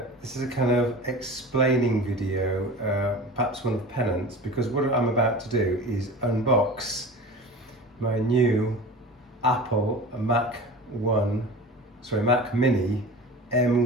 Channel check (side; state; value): both; normal; correlation 0.35